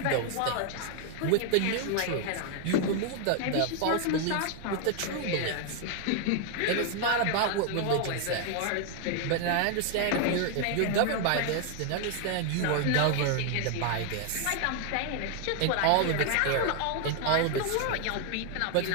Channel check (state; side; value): different; both; correlation 0.00